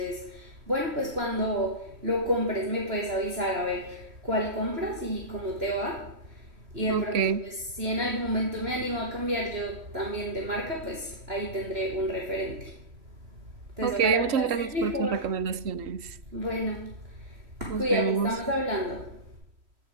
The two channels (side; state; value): left; late; 3.1 ms